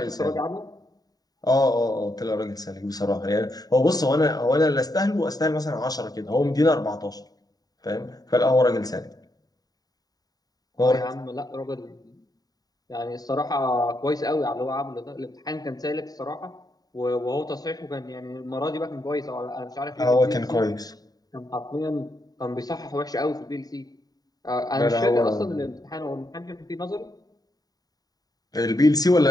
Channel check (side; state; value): right; late; 0.18 ms